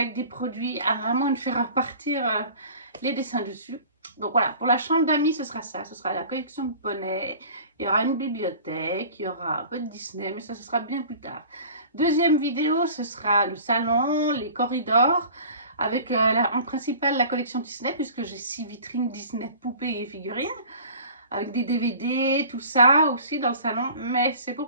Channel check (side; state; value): both; inverted; correlation -0.43